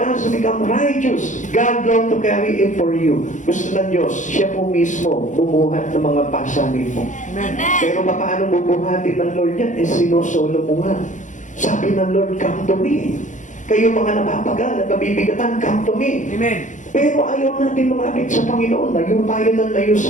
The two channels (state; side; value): late; right; 0.36 ms